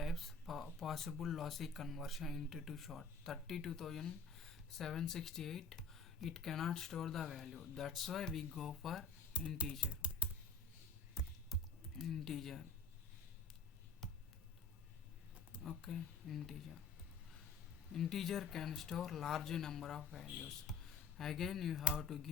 possible lossy conversion into too short. 32,768. It cannot store the value. That's why we go for integer. Okay, integer can store large number of values. Again you have to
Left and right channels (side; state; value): right; quieter; 4.5 dB